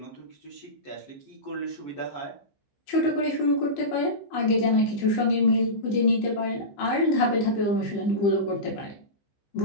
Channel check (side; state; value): right; late; 15 ms